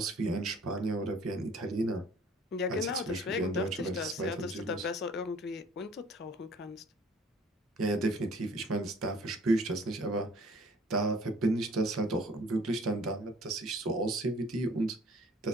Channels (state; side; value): normal; both; correlation 0.54